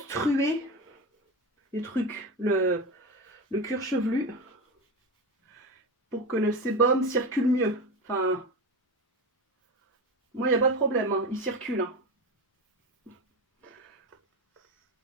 les trucs, le cuir chevelu, pour que le sébum circule mieux. Enfin, moi, il n'y a pas de problème, il circule.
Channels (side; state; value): both; normal; correlation 0.22